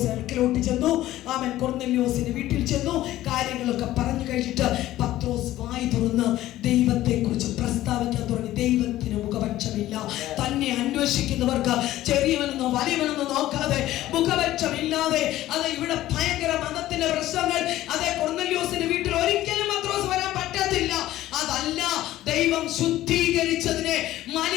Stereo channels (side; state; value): right; quieter; 14.8 dB